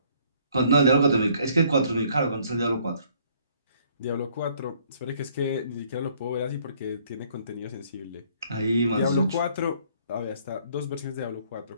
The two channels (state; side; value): inverted; both; correlation -0.62